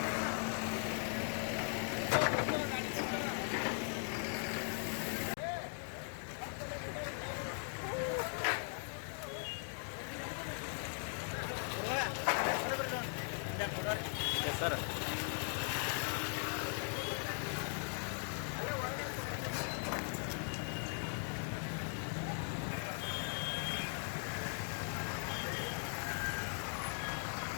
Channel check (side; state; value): right; silent; 51 dB below the other